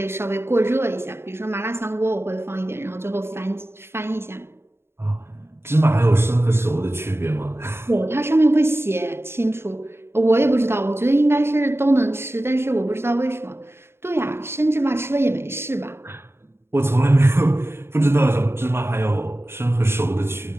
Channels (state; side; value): late; left; 0.12 ms